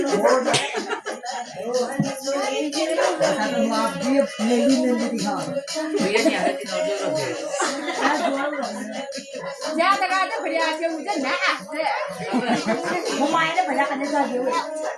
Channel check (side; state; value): both; identical; correlation 1.00